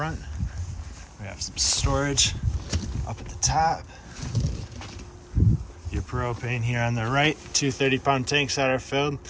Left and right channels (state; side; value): identical; both; correlation 1.00